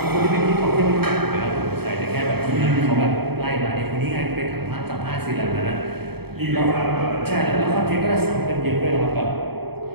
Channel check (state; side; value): late; left; 0.97 ms